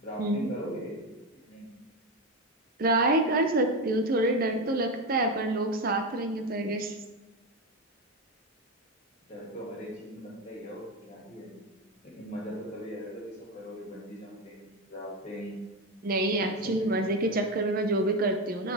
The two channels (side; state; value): both; normal; correlation 0.14